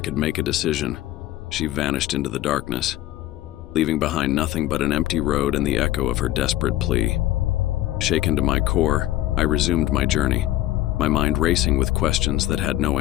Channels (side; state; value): right; quieter; 14.6 dB